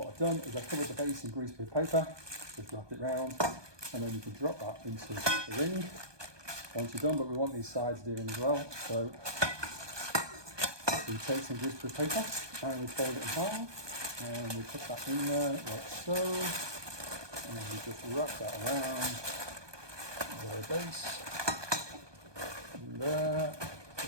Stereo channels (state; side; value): late; left; 1.2 ms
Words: I've done is I've covered the base in greaseproof paper, just wrapped it round, and then you can drop that into the ring once you're done, but we want these sides doing as well. So we take some greaseproof paper and we fold it in half. And we put that in there like so, and then we just wrap that around the base, and there,